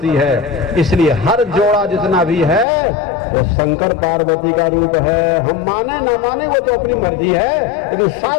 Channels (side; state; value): right; drops out; at 2.7 s